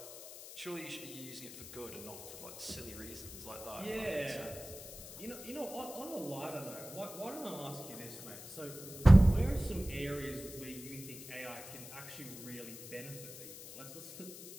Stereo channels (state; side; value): noise; left; hiss, 13 dB below the sound